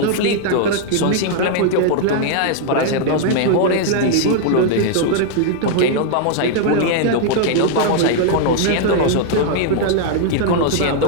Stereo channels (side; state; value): both; different; correlation 0.00